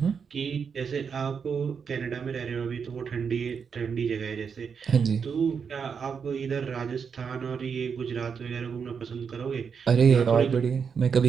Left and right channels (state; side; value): quieter; left; 6.4 dB